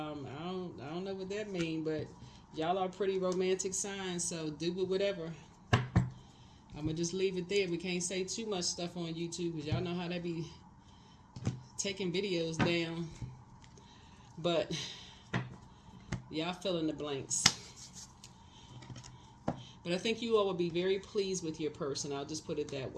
don't know what that means, but y'all are pretty romantic signs. So do whatever. I'm gonna just leave it there. We can't say too much stuff on YouTube because y'all know how they be taking videos down. But y'all fill in the blanks. But I think you all will be very pleased with your person. I'll just put it that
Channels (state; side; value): identical; both; correlation 1.00